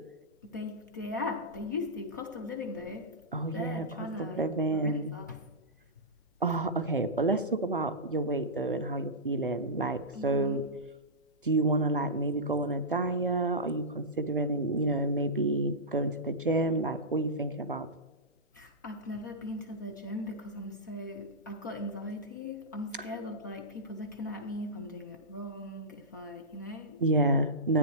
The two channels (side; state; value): both; normal; correlation -0.13